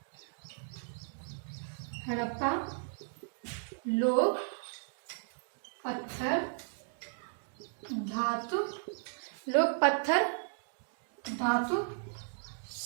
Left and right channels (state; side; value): silent; left; digital silence